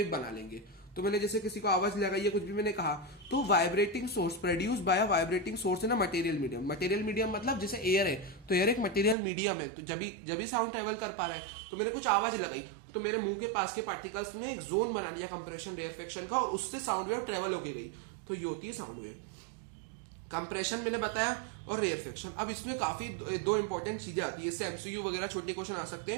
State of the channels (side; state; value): left; drops out; at 9.2 s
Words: बना लेंगे। तो मैंने जैसे किसी को आवाज लगाई है, कुछ भी मैंने कहा, तो vibrating source produce by vibrating source in a material medium. Material medium मतलब जैसे एयर है, तो एयर एक मटेरियल मीडियम है, तो जब भी साउंड ट्रेवल कर पा रहा है, तो मैंने कुछ आवाज लगाई, तो मेरे मुंह के पास के पार्टिकल्स ने एक जोन बना लिया कंप्रेशन रेयरफेक्शन का, और उससे साउंड वेव ट्रेवल होके गई, तो ये होती है साउंड वेव। कंप्रेशन मैंने बताया और रेयरफेक्शन। अब इसमें काफी दो इंपॉर्टेंट चीजें आती है, इससे एमसीक्यू वगैरह छोटे क्वेश्चन आ सकते